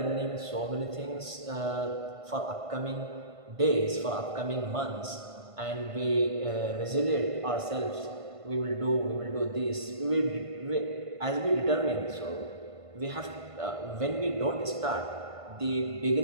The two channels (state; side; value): late; left; 1.5 ms